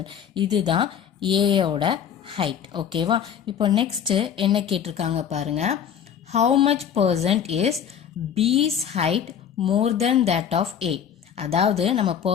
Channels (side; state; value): right; quieter; 8.4 dB